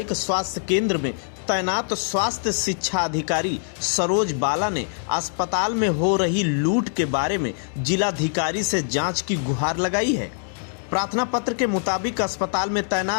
स्वास्थ्य केंद्र में तैनात स्वास्थ्य शिक्षा अधिकारी सरोज बाला ने अस्पताल में हो रही लूट के बारे में जिलाधिकारी से जांच की गुहार लगाई है। प्रार्थना पत्र के मुताबिक अस्पताल में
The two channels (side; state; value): right; silent; digital silence